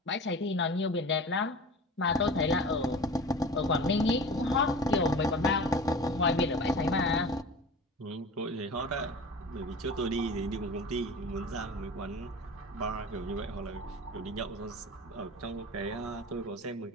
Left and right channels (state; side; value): normal; both; correlation 0.37